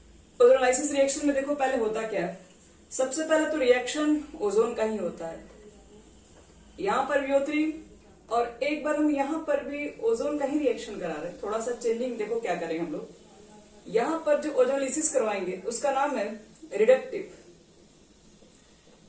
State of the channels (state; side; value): identical; both; correlation 1.00